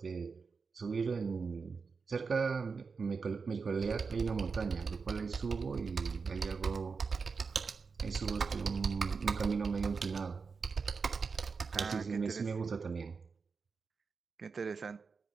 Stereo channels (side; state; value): left; quieter; 5.0 dB